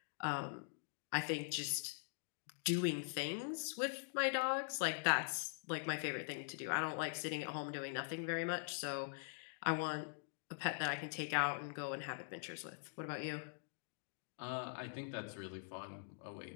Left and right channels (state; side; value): silent; right; digital silence